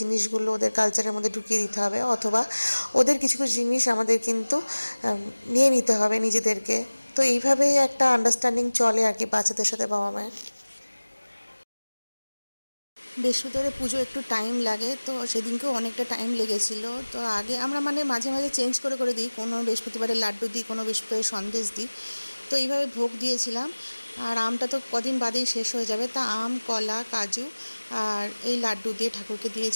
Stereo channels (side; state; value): both; inverted; correlation -1.00